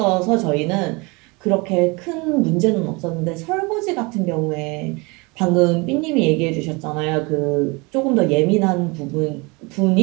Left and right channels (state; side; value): quieter; left; 27.2 dB